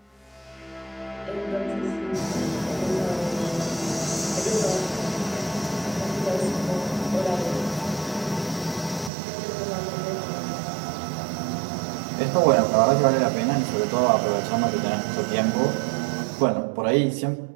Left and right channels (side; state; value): left; drops out; at 9.1 s